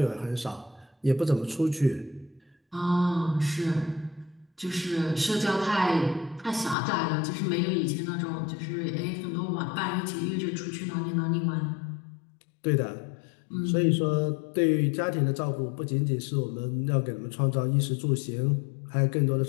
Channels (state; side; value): drops out; right; at 6.8 s